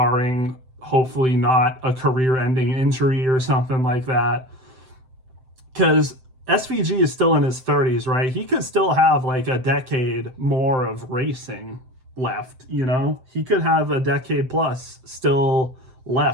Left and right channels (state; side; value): late; left; 7.8 ms